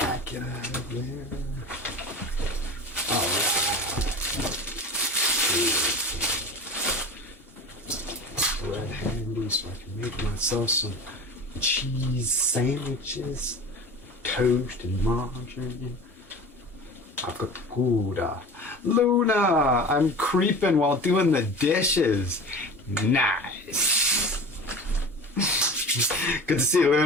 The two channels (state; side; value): normal; both; correlation 0.35